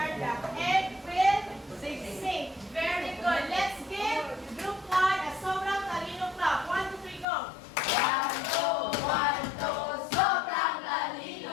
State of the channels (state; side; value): drops out; right; at 7.2 s